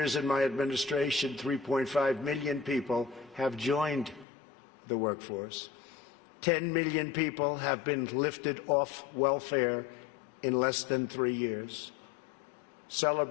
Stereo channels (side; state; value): right; drops out; at 4.2 s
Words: in my administration, 3.5 million people have joined the workforce. 10 million people have been lifted off welfare in less than 3 years.